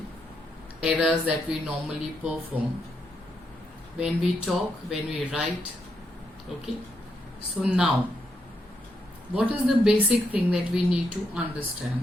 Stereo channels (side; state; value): both; normal; correlation 0.80